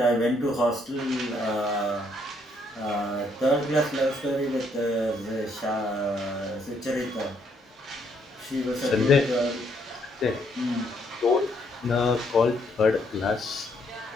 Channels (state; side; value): normal; both; correlation 0.71